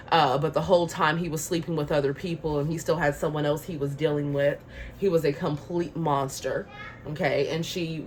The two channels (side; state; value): both; identical; correlation 1.00